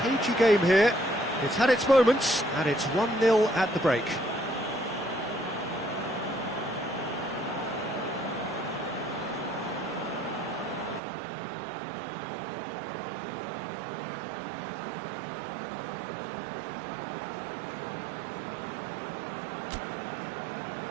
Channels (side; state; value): left; drops out; at 11.0 s